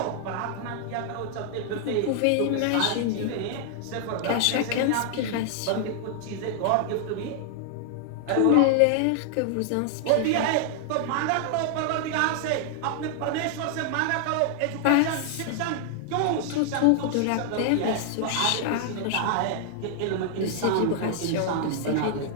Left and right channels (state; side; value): different; both; correlation 0.00